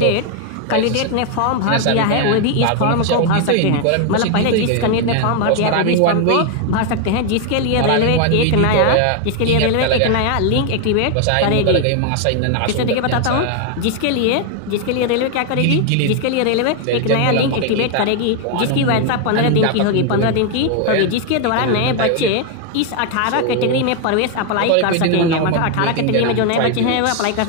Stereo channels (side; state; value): both; different; correlation 0.00